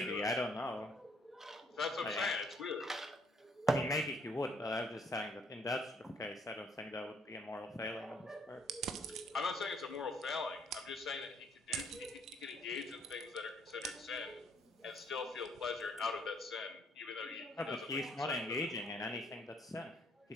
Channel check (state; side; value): normal; both; correlation 0.67